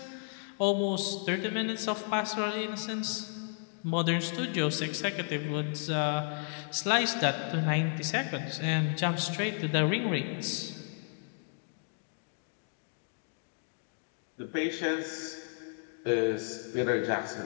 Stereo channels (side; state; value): right; silent; 56 dB below the other